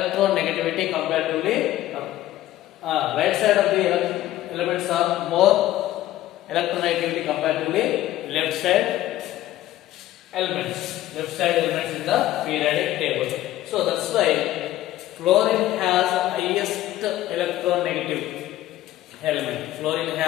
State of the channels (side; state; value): right; quieter; 14.3 dB